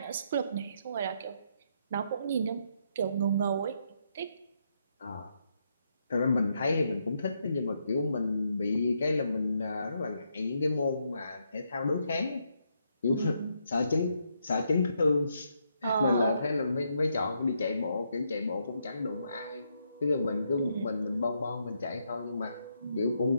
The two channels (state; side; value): inverted; both; correlation -0.78